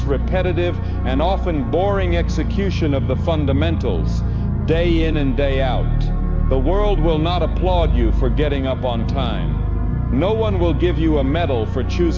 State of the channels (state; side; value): identical; both; correlation 1.00